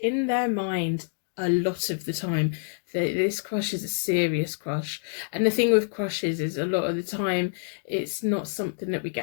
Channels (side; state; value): right; silent; digital silence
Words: in their mind a lot of the time. This crush is a serious crush, and the thing with crushes is a lot of the time it's not something that we